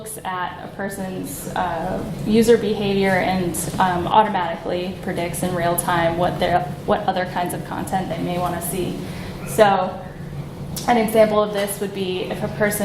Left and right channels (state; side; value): identical; both; correlation 1.00